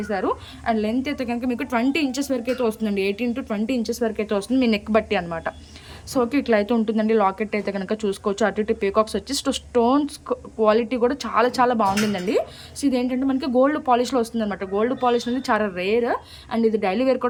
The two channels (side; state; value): both; identical; correlation 1.00